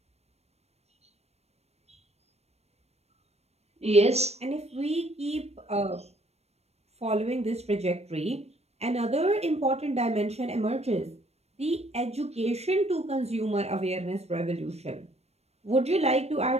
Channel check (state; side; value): late; left; 0.31 ms